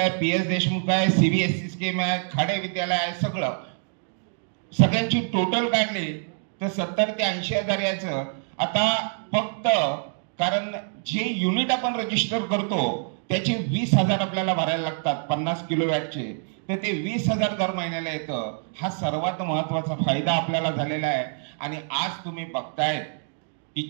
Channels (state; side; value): silent; left; 61 dB below the other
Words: PS देशमुख आहे, CBSE स्कीम आहे, खाडे विद्यालय आहे, सगळ्यांची टोटल काढली तर 70 ते 80 हजार यायचं. आता फक्त कारण जे युनिट आपण रजिस्टर करतो त्याचे 20,000 आपल्याला भरायला लागतात 50 किलोवॅटचे, तर ते 20,000 दर महिन्याला येतं. हा सर्वात महत्वाचा फायदा आपल्याला झालेला आहे. आणि आज तुम्ही बघताय की